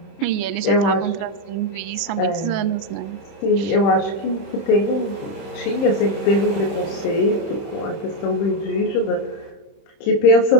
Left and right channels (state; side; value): late; right; 30 ms